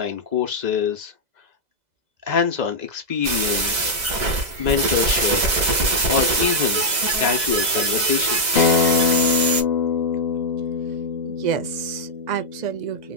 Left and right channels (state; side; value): late; left; 2.0 ms